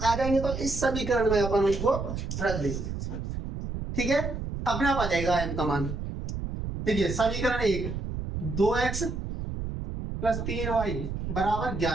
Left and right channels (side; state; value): right; noise; rumble, 5 dB below the sound